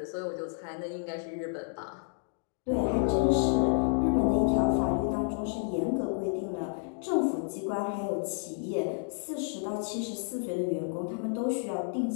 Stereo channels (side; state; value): right; silent; 57 dB below the other